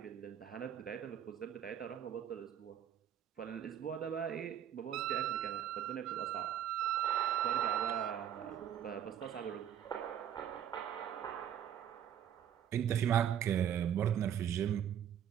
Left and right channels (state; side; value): quieter; left; 9.8 dB